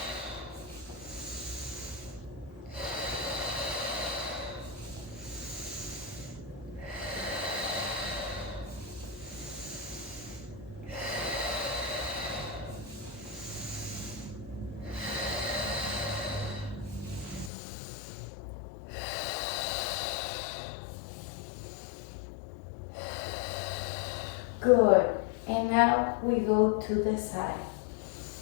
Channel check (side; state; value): right; drops out; at 17.5 s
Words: Good. And now we go to the side.